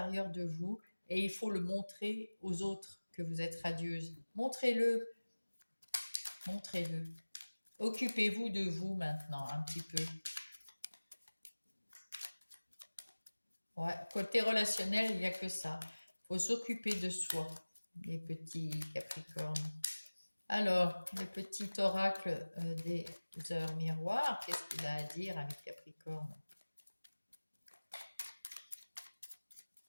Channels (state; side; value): inverted; both; correlation -1.00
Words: de vous et il faut le montrer aux autres que vous êtes radieuse. Montrez-le, montrez-le. Occupez-vous de vous maintenant un petit peu. Ouais, côté relationnel, il n'y a que ça. Il faut s'occuper de soi, les petits Capricornes. Alors, le petit oracle des heures miroirs, qu'est-ce qu'il a à dire à mes Capricornes?